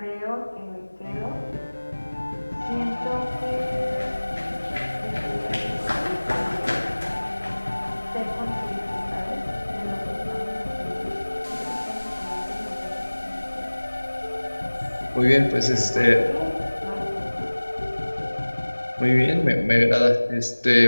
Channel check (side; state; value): both; inverted; correlation -1.00